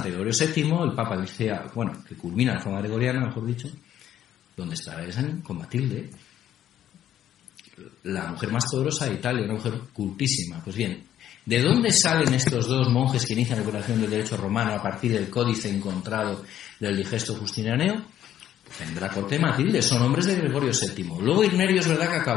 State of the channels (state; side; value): quieter; right; 11.3 dB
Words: Gregorio VII, el Papa dice, que culmina la reforma gregoriana, mejor dicho, donde está con Matilde, la mujer más poderosa de Italia, una mujer cultísima. Pues bien, ¿de dónde salen estos dos monjes que inician la operación del derecho romano a partir del códice encontrado del Digesto Justinianeo? En la corte de Matilde, son hombres de Gregorio VII. Luego Irnerio es verdad que